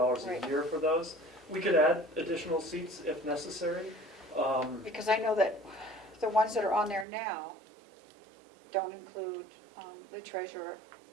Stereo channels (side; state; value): left; drops out; at 7.1 s